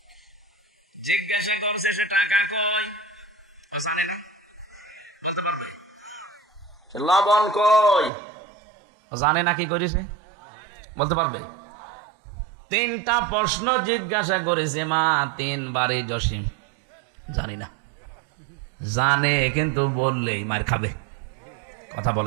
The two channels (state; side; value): drops out; left; at 8.1 s